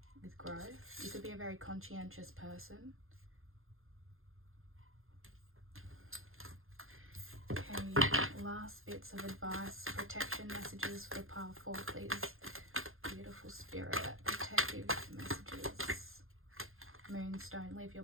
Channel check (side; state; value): left; late; 0.60 ms